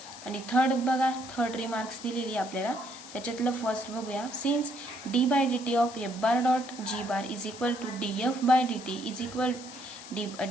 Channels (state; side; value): noise; left; hiss, 15 dB below the sound